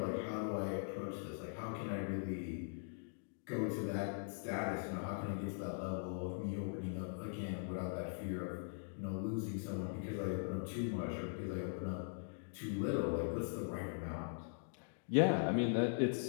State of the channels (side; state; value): right; silent; digital silence